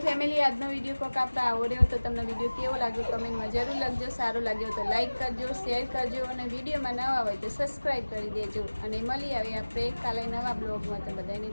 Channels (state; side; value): inverted; both; correlation -1.00